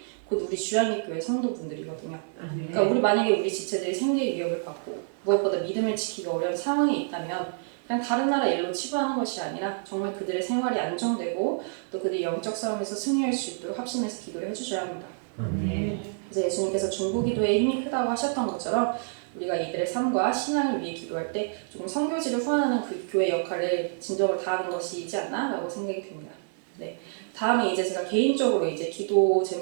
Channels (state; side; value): silent; left; 57 dB below the other